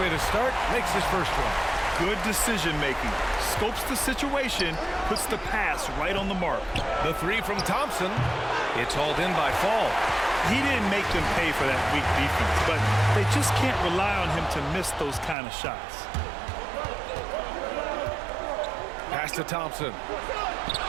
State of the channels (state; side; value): drops out; left; at 15.4 s